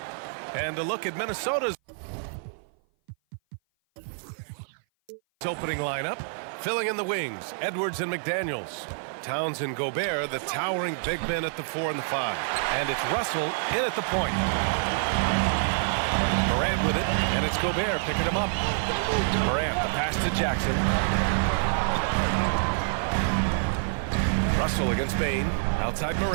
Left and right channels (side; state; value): left; silent; 57 dB below the other